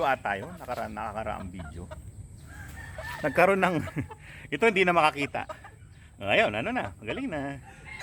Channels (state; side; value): identical; both; correlation 1.00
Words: ata yun. Nakaraang video. Nagkaroon ng ito hindi na makakita. Ayun, ano na, magaling na.